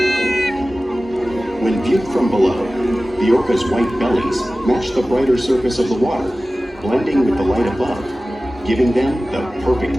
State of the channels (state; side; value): normal; both; correlation 0.96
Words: When viewed from below, the orca's white bellies match the brighter surface of the water, blending with the light above, giving them the